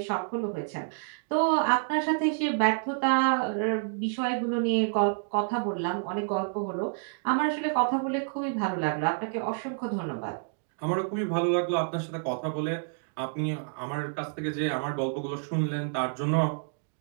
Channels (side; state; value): left; silent; digital silence